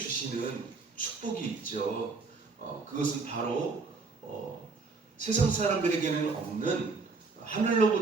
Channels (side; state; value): left; quieter; 4.2 dB